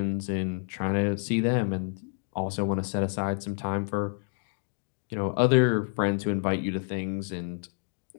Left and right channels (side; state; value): right; silent; 59 dB below the other